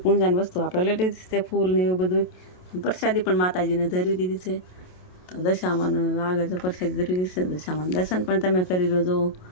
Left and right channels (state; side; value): late; right; 27 ms